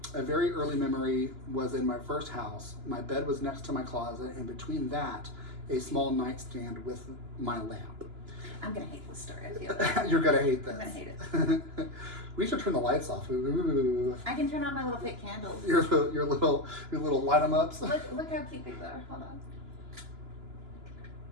A very early memory was in my first house. My bed was next to my closet, and between that, a small nightstand with my lamp." I'm gonna hate this story. I feel. You're gonna hate this. I'm gonna hate it. We should turn the lights off. Ooh. I can turn on my little fake candles. Your little light 'em ups. Look how cute these are. Hold on.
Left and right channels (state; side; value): late; left; 2.9 ms